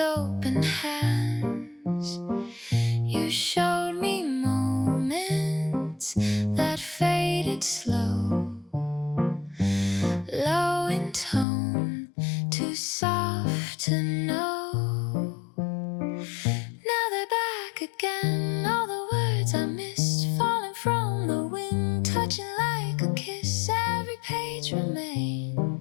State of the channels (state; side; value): drops out; right; at 11.5 s